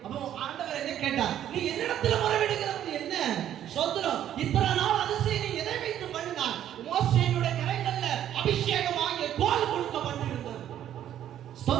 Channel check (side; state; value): left; quieter; 11.0 dB